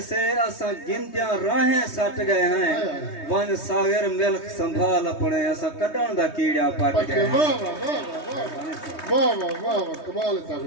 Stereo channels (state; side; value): late; right; 3.2 ms